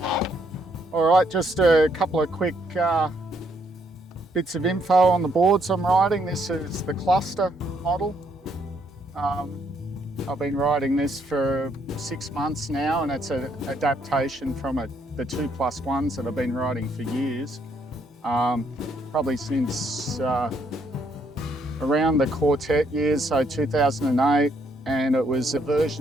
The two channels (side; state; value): both; normal; correlation 0.72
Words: All right, just a couple of quick bits of info on the boards I'm riding. This is the cluster model. I've been riding this for 6 months now, and it's an adaptation from the 2+1s that I've been riding for years. Probably since around the Quartet years, so 2008, and it was a